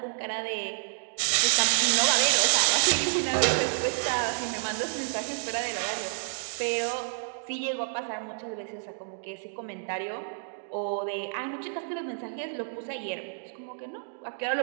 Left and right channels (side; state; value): left; silent; digital silence